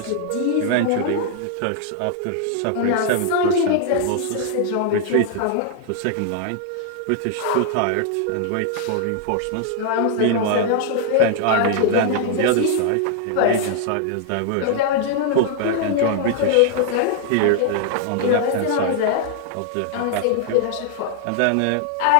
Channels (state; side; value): different; both; correlation 0.00